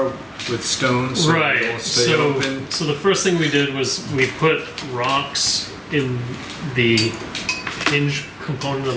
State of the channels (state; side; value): identical; both; correlation 1.00